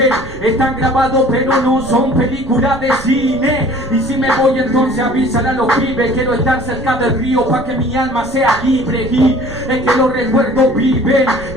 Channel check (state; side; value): noise; right; rumble, 15 dB below the sound